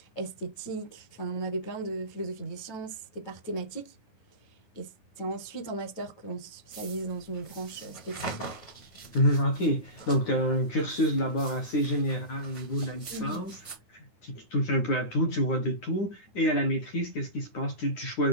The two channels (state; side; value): late; right; 9.8 ms